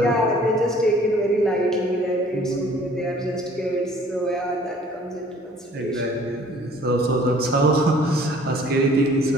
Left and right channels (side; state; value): both; normal; correlation 0.54